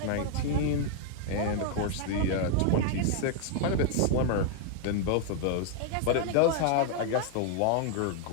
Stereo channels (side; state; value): both; different; correlation 0.00